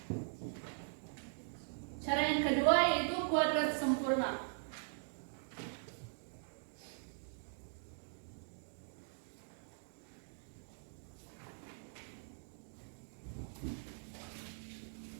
Cara yang kedua yaitu kuadrat sempurna.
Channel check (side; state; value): left; silent; digital silence